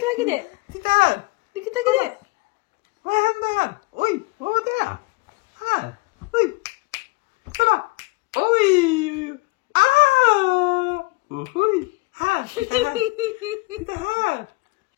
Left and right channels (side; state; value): right; quieter; 25.4 dB